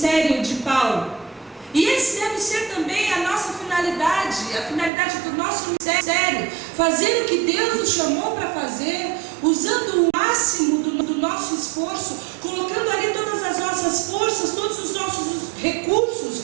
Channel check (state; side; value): drops out; left; at 4.9 s